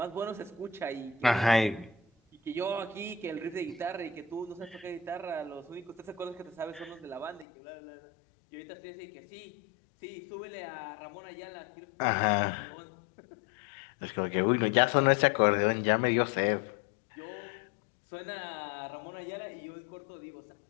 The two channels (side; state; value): right; drops out; at 7.5 s